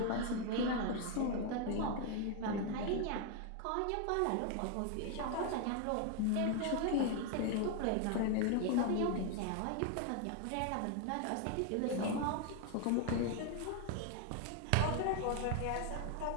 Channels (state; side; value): different; both; correlation 0.01